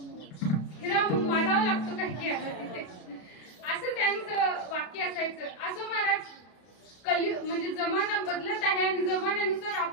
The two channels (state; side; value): late; right; 33 ms